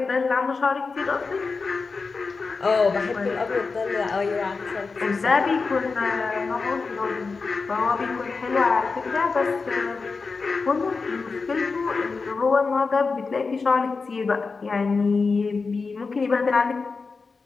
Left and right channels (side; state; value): right; quieter; 4.4 dB